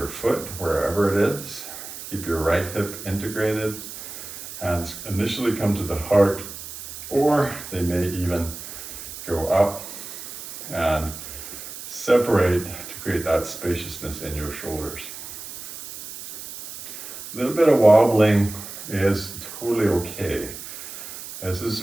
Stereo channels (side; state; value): right; noise; hiss, 11 dB below the sound